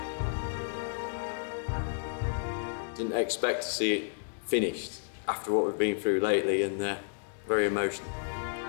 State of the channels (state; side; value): silent; right; digital silence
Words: Didn't expect to see it finished after what we've been through lately, and very emotional.